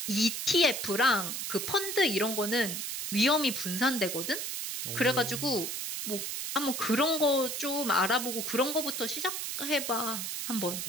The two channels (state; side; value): noise; right; hiss, 4 dB below the sound